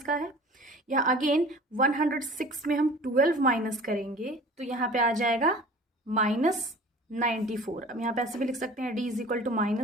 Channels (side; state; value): both; normal; correlation 0.44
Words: का है। या अगेन 106 में हम 12 माइनस करेंगे तो यहाँ पे आ जाएगा -94। अब यहाँ पे ऐसे भी लिख सकते हैं D is equal to